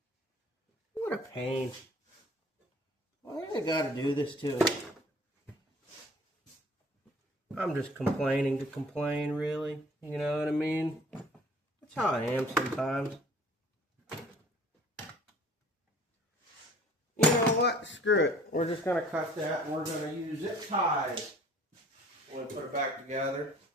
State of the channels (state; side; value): normal; both; correlation 0.52